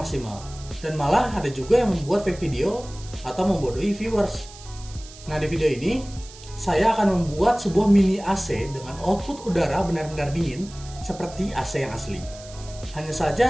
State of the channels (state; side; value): noise; right; hiss, 18 dB below the sound